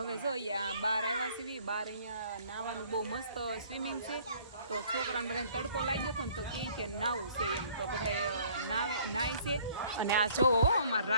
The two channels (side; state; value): both; inverted; correlation -0.56